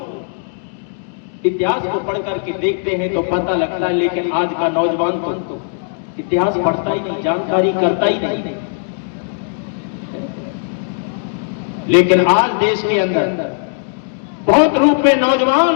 इतिहास को पढ़ करके देखते हैं तो पता लगता है, लेकिन आज का नौजवान तो इतिहास पढ़ता ही नहीं, जानकारी करता ही नहीं। लेकिन आज देश के अंदर बहुत रूप में नौजवान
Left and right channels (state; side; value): silent; right; 65 dB below the other